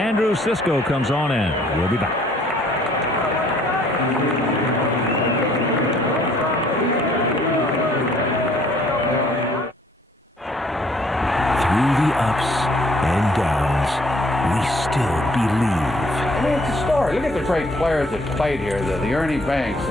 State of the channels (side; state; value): both; normal; correlation 0.61